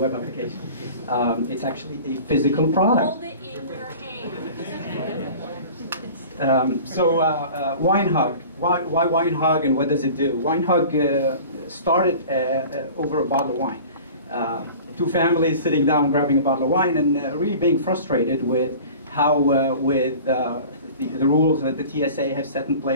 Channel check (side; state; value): both; inverted; correlation -0.41